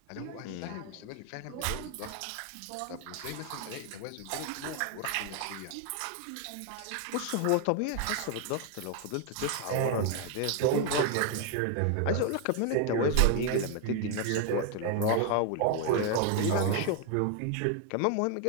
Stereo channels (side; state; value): both; different; correlation 0.00